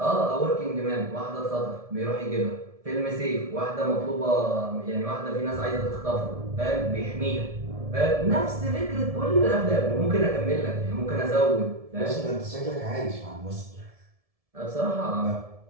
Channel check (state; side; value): late; left; 1.7 ms